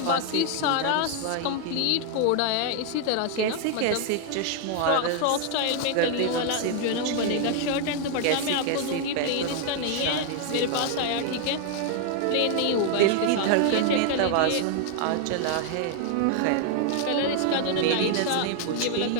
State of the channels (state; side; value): different; both; correlation 0.00